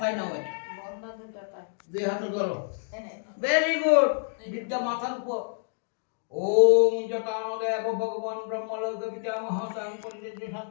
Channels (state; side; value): silent; right; digital silence